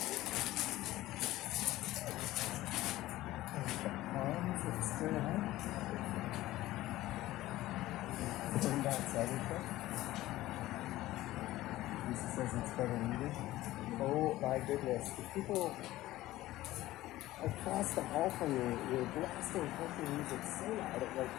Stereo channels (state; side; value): quieter; right; 16.3 dB